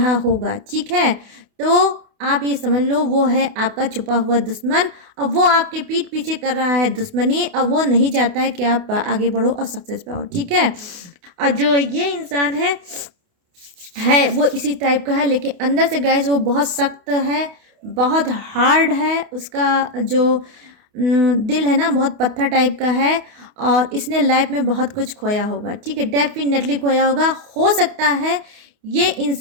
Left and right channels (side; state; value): left; late; 28 ms